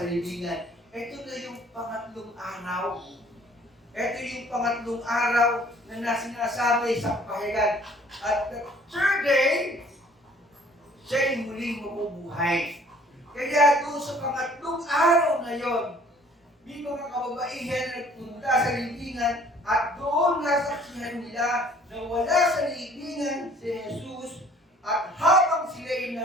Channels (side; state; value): both; normal; correlation 0.55